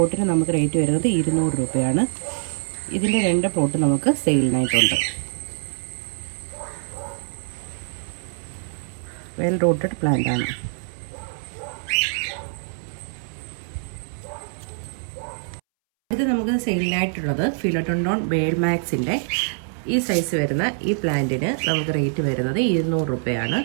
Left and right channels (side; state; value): left; silent; 63 dB below the other